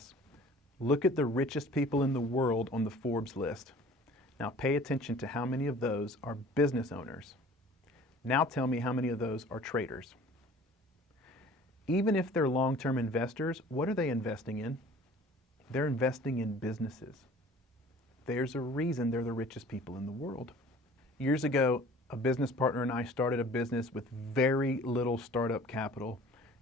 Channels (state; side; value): normal; both; correlation 0.48